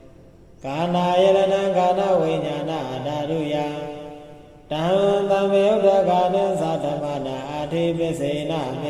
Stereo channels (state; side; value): identical; both; correlation 1.00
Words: ကာနာယရဏကာနဝိညာဏဓာတုယတံသမယုတ်တကနိသတ္တမနာအဋ္ဌိပစ္စေနပစ